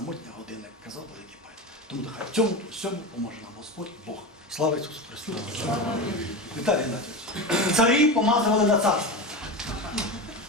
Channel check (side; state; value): both; normal; correlation 0.23